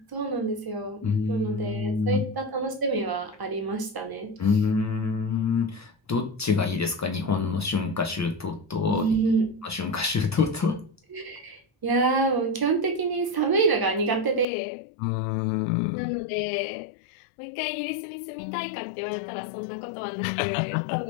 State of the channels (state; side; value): drops out; right; at 14.5 s